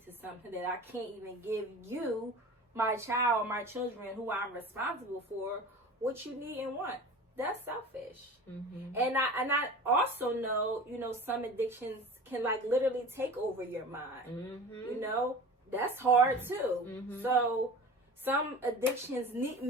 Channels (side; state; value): both; normal; correlation 0.37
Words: to something that I can't even give you, my child, my children, who I'm responsible for, what you need and want. That's selfish. And I also know, some addictions can like literally take over your mind. That's hard too. So some addictions